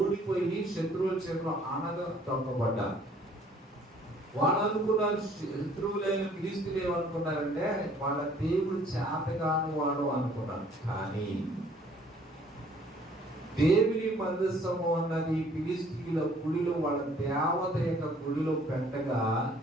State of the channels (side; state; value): both; normal; correlation 0.58